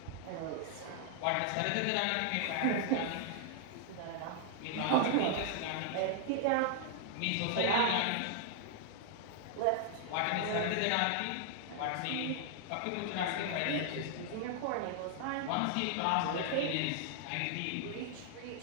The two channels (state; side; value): different; both; correlation 0.00